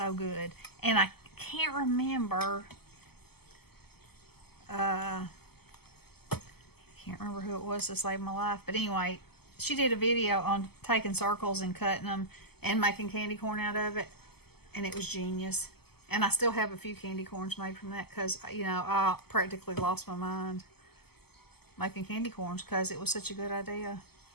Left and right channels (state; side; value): late; right; 0.96 ms